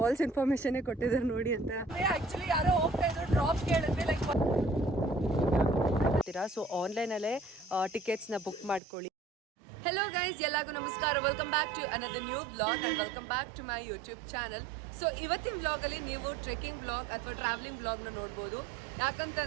ಇನ್ಫಾರ್ಮೇಶನ್ ಕೊಟ್ಟಿದ್ದಾರೆ ನೋಡಿ ಅಂತ. ಆಕ್ಚುಲಿ ಯಾರೋ ಹೋಗ್ತಾ ಇದ್ರು, ಡ್ರಾಪ್ ಕೇಳಿದ್ರೆ ಲೈಕ್ ಸೊ ಆನ್ಲೈನಲ್ಲೇ ಟಿಕೆಟ್ಸ್ನ ಬುಕ್ ಮಾಡ್ಕೊಳ್ಳಿ. ಹೆಲೋ ಗೈಸ್, ಎಲ್ಲರಿಗೂ ನಮಸ್ಕಾರ. Welcome back to another new vlog and welcome back to my YouTube channel. So ಇವತ್ತಿನ ವ್ಲಾಗಲ್ಲಿ ನೀವು ಟ್ರೆಕ್ಕಿಂಗ್ ವ್ಲಾಗ್ ಅಥವಾ ಟ್ರಾವೆಲಿಂಗ್ ವ್ಲಾಗ್ನ ನೋಡ್ಬೋದು.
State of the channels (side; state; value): left; drops out; at 8.8 s